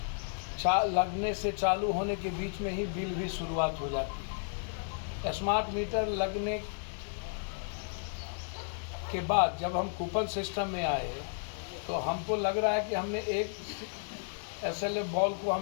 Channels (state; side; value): silent; right; 56 dB below the other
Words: लगने से चालू होने के बीच में ही बिल भी शुरुआत हो जाती है। स्मार्ट मीटर लगने के बाद जब हम कूपन सिस्टम में आए, तो हमको लग रहा है कि हमने एक SLF बॉल को